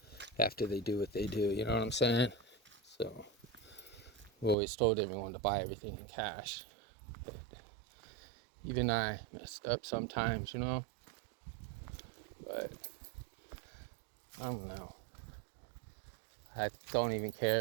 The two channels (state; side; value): drops out; left; at 4.5 s